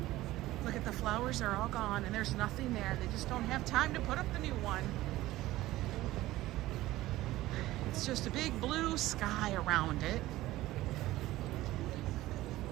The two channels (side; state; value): left; quieter; 16.7 dB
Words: look at the flowers. They're all gone, and there's nothing there. They just don't have time to put up the new one. It's just a big blue sky around it.